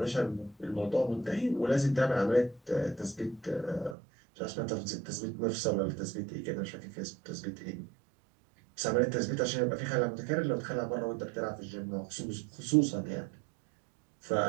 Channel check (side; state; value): left; drops out; at 4.0 s